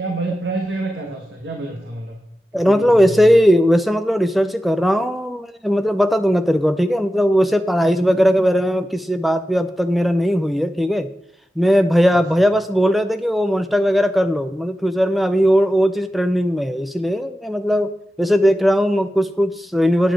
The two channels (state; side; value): normal; both; correlation 0.93